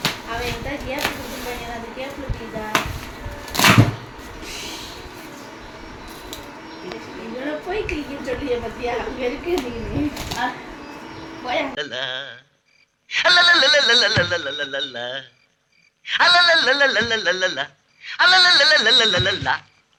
போய் கிளிக்கின்னு சொல்லிய பத்தியா அங்கே இருக்கு.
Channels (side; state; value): both; identical; correlation 1.00